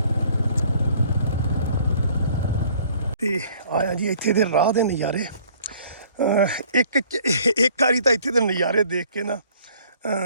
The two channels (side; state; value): both; inverted; correlation -0.57